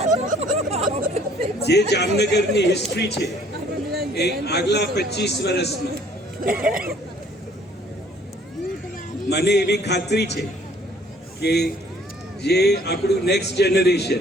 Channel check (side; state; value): both; normal; correlation 0.58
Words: જે જામનગરની હિસ્ટ્રી છે એ આગલા 25 વર્ષમાં મને એવી ખાતરી છે કે જે આપણું નેક્સ્ટ જનરેશન,